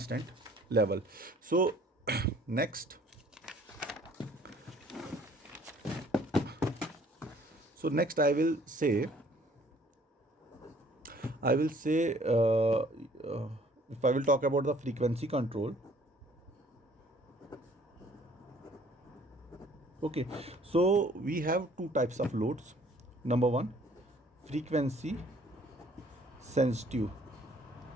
level. So next I will say if I will talk about the frequency control. Okay, so we have two types of loads. Number one, frequency sensitive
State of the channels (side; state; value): both; normal; correlation 0.57